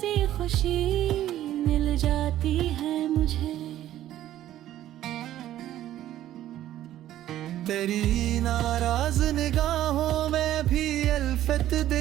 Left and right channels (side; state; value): left; quieter; 13.0 dB